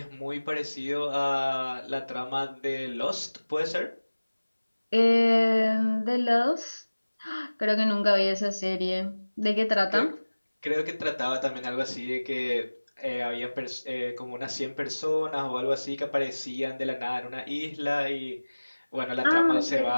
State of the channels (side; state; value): both; inverted; correlation -1.00